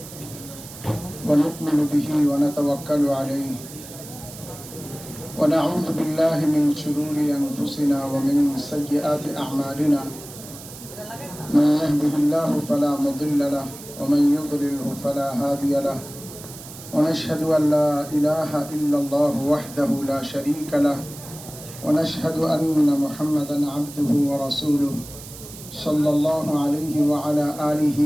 ونؤمن به ونتوكل عليه ونعوذ بالله من شرور أنفسنا ومن سيئات أعمالنا من يهده الله فلا مضل له ومن يضلله فلا هادي له ونشهد أن لا إله إلا الله وحده لا شريك له ونشهد أن محمدا عبده ورسوله صلى الله عليه وعلى آله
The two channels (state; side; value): noise; right; hiss, 15 dB below the sound